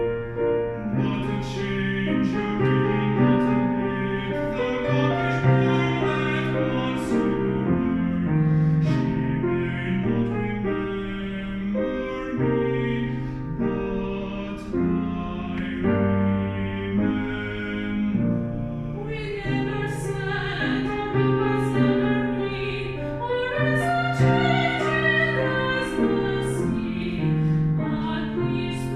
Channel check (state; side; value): identical; both; correlation 1.00